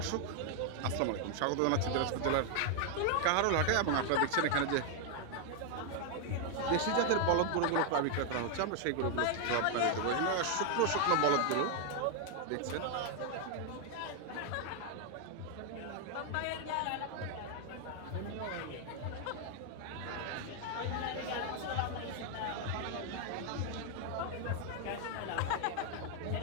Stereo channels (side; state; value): both; different; correlation 0.00